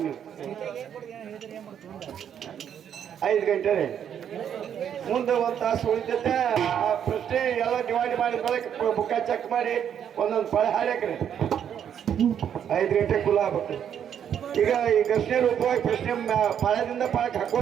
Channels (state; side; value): quieter; left; 8.9 dB